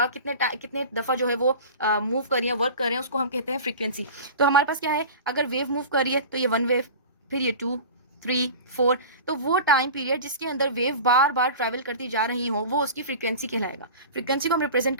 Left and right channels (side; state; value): both; inverted; correlation -0.35